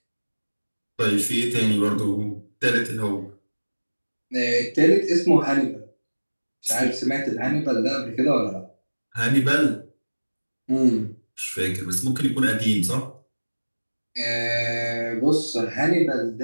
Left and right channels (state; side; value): inverted; both; correlation -1.00